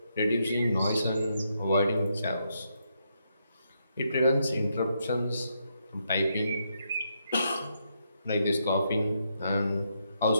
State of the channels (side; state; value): both; inverted; correlation -0.79